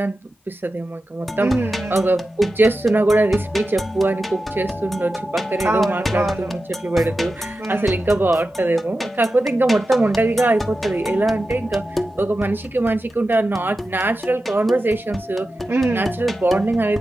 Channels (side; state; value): both; normal; correlation 0.92